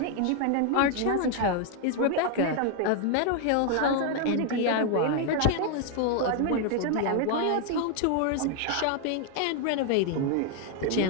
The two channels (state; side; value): different; both; correlation 0.01